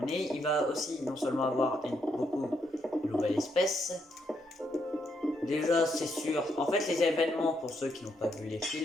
Il va aussi non seulement avoir beaucoup de nouvelles espèces. Déjà, c'est sûr. En fait, les événements, pour ceux qui n'ont pas vu les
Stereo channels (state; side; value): normal; both; correlation 0.77